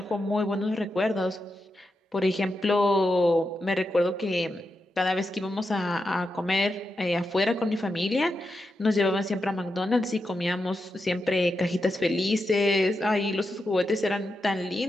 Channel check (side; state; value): both; normal; correlation 0.87